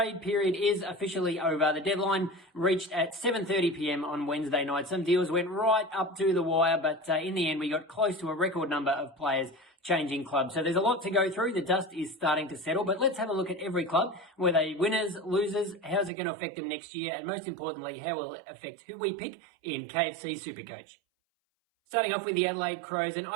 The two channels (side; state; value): left; drops out; at 16.1 s